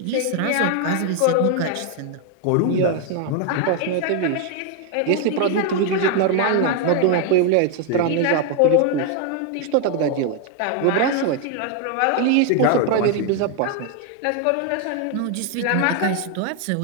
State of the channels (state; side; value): different; both; correlation 0.01